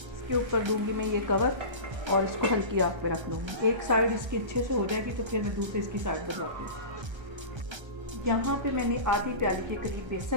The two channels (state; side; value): late; left; 1.3 ms